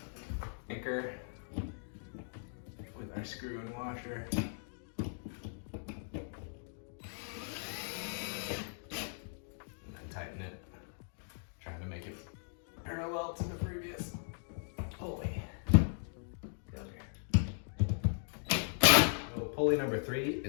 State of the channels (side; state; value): right; silent; digital silence